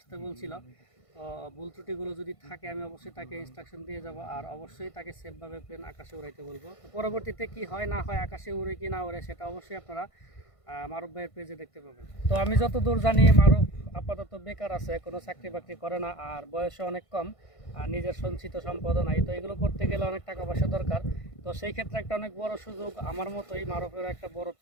বলছিল। তো ভুল ত্রুটিগুলো যদি থাকে আমি অবশ্যই তাকে ইনস্ট্রাকশন দিয়ে যাব, আর অবশ্যই তাকে সেফভাবে প্লেন আকাশে উড়াইতে বলবো। তো পরবর্তীতে কি হয় না হয়, আকাশে উড়ে কি না উড়ে, সেটা অবশ্যই আপনারা মারুফ ভাইয়ের পেজে দেখতে পাবেন। তো আমি যতদূর জানি মারুফ আপাতত বেকার আছে, কোনো চাকরি বাকরি করে না, আর বয়সও অনেক কম, আর নিজের সঞ্চিত সম্পদও নাই। তো এগুলো করতে গেলে অনেক টাকা পয়সা দরকার। তো সেই ক্ষেত্রে একটা অনেক বড় সুযোগ, আমার মতোই মারুফের একটা বড়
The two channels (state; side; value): late; right; 1.5 ms